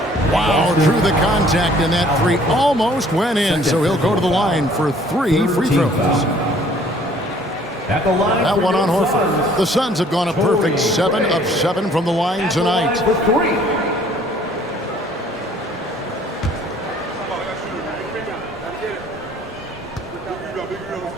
Wow, drew the contact, and that 3 almost went in, so he'll go to the line for 3 free throws. That one on Horford. The Suns have gone a perfect 7 of 7 from the line tonight.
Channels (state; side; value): normal; both; correlation 0.57